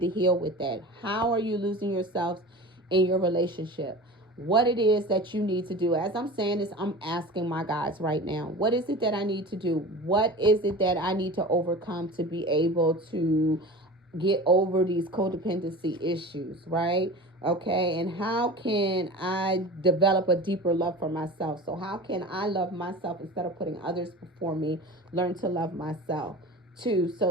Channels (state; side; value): normal; both; correlation 0.35